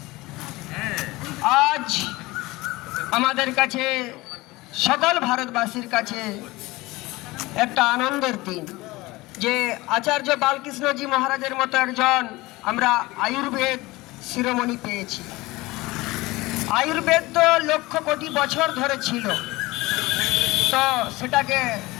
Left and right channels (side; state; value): right; quieter; 20.7 dB